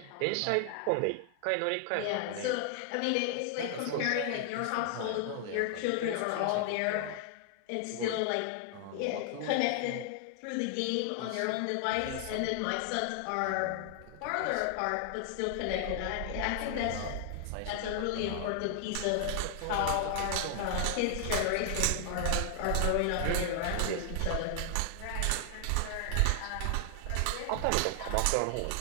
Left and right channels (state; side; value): different; both; correlation 0.00